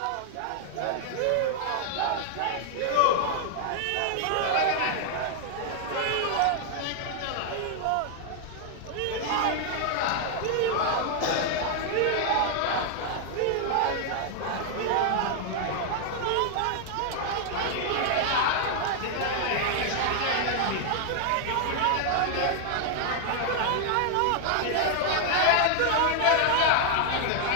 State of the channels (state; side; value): different; both; correlation 0.00